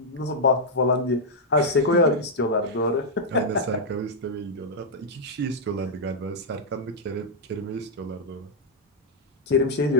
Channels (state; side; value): normal; both; correlation -0.04